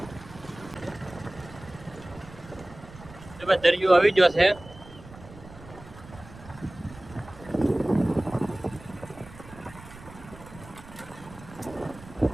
દરિયો આવી ગયો છે.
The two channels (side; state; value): right; noise; rumble, 18 dB below the sound